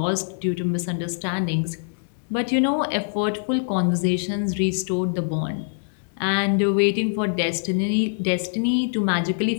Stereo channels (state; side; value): silent; right; digital silence